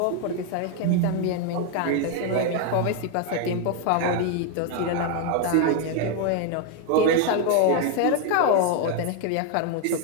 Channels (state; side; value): different; both; correlation 0.01